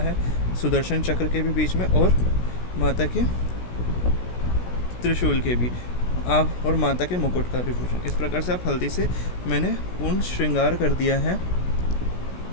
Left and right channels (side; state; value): right; late; 16 ms